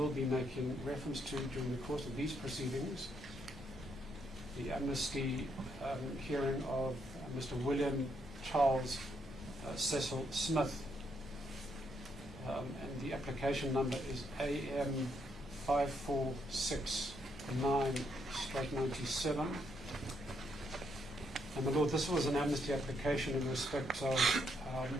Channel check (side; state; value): both; normal; correlation 0.76